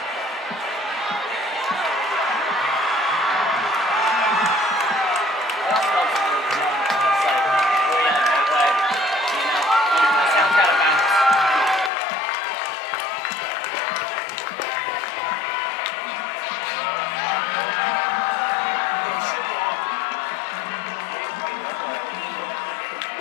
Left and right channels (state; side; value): drops out; right; at 11.9 s